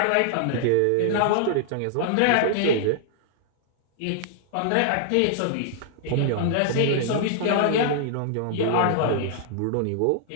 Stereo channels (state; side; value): different; both; correlation -0.01